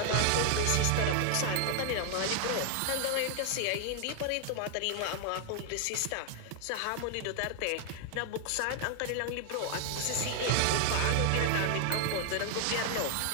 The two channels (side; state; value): both; different; correlation 0.00